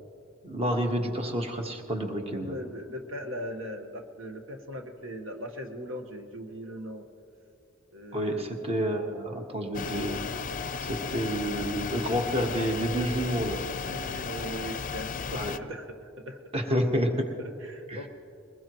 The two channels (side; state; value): both; normal; correlation 0.53